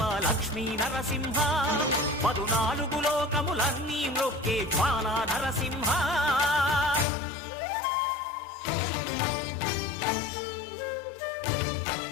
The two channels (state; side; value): drops out; right; at 7.1 s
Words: లక్ష్మీ నరసింహ 14 లోకములన్నీ మ్రొక్కే జ్వాలా నరసింహ